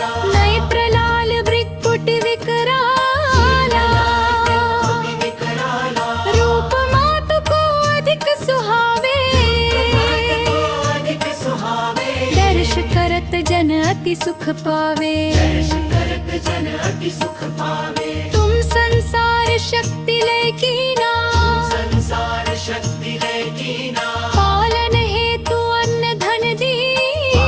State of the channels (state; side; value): identical; both; correlation 1.00